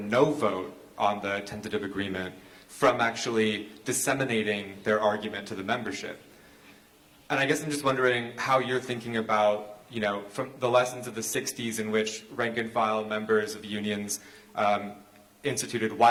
vote on the tentative agreement from actually disseminating their argument to the membership. And I guess I'm just wondering how you're thinking about, from the lessons of the 60s in which rank-and-file members of unions instituted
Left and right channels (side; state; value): both; identical; correlation 1.00